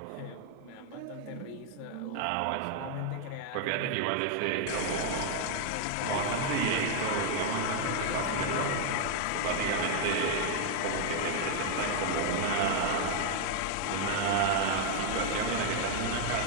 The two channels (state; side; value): different; both; correlation 0.00